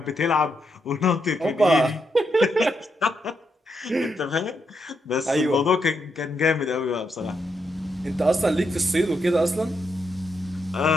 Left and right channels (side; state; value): both; normal; correlation 0.81